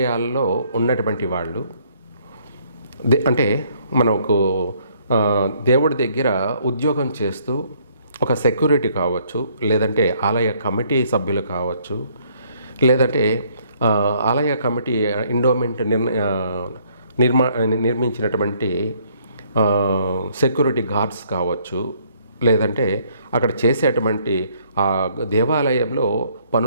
ఉన్నటువంటి వాళ్ళు అంటే మనకు దేవుడి దగ్గర ఉద్యోగం చేస్తూ ఒక సెక్యూరిటీ కావచ్చు, లేదంటే ఆలయ కమిటీ సభ్యులు కావచ్చు, లేదంటే ఆలయ కమిటీ ఎండోమెంట్ నిర్మించినటువంటి సెక్యూరిటీ గార్డ్స్ కావచ్చు, లేదంటే అక్కడ చేసేటువంటి ఆ దేవాలయంలో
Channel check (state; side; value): inverted; both; correlation -0.65